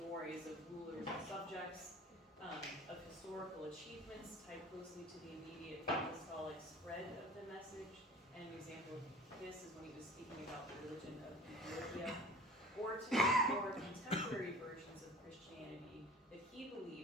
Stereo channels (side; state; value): both; normal; correlation 0.42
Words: of rulers and subjects, of historical achievements tied closely to the immediate apostolic spread of the message. And an example of this is when he was speaking about the religion of Ethiopia, or to more contemporary versions of Christianity that he